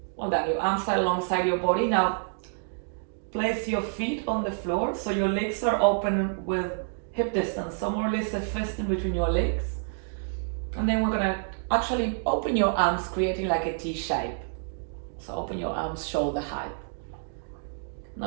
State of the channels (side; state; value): left; silent; digital silence